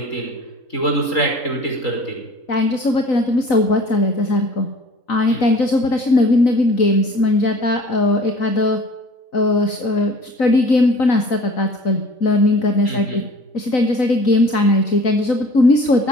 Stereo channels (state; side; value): late; right; 4.0 ms